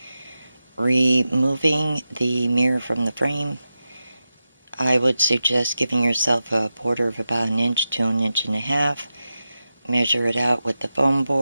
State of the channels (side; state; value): both; inverted; correlation -0.91